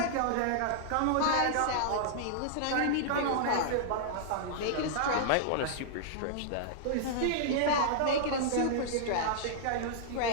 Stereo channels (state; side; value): different; both; correlation -0.02